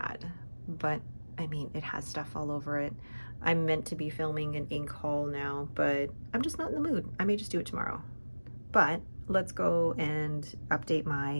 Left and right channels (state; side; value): inverted; both; correlation -1.00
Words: but I mean, it has stuff all over it. I'm meant to be filming an ink haul now, but I'm just not in the mood. I may just do it tomorrow. But let's go and update